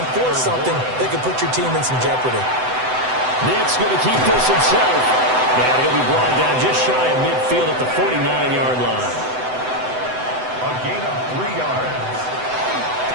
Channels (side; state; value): left; late; 7.9 ms